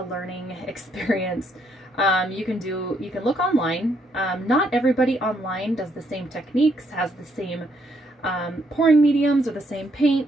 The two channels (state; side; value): normal; both; correlation 0.72